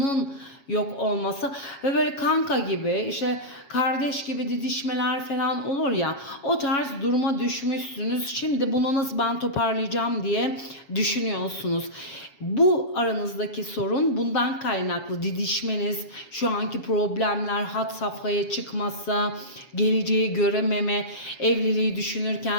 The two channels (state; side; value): late; right; 7.2 ms